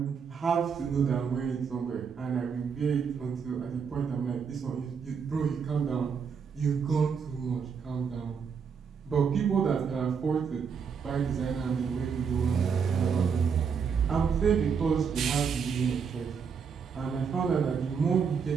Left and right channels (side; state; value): left; quieter; 6.3 dB